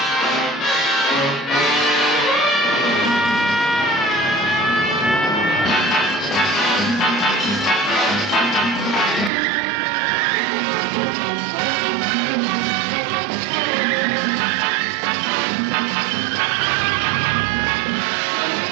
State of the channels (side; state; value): left; drops out; at 9.3 s